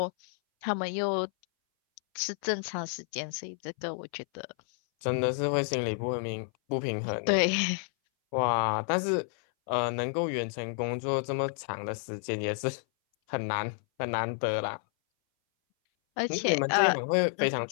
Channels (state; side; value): silent; right; 58 dB below the other